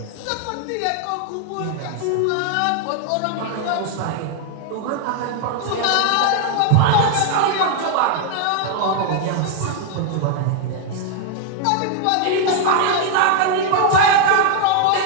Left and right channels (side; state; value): both; different; correlation 0.00